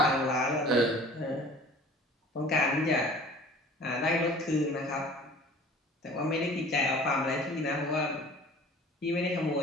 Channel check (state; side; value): normal; both; correlation 0.46